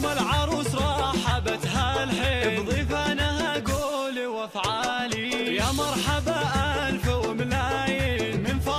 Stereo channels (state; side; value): identical; both; correlation 1.00